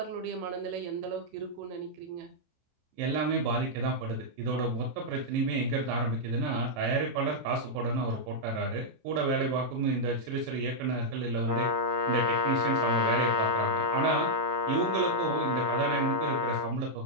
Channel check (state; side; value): late; left; 27 ms